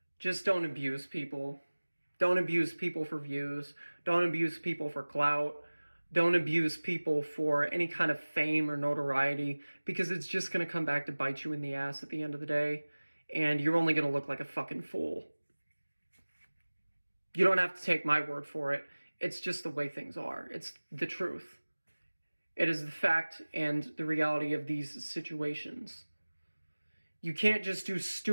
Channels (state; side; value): inverted; both; correlation -1.00